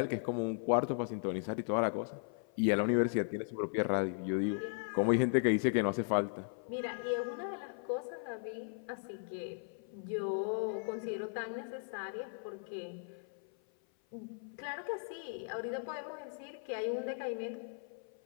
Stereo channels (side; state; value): right; silent; 53 dB below the other